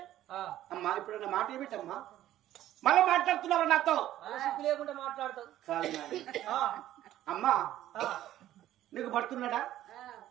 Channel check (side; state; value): left; quieter; 13.2 dB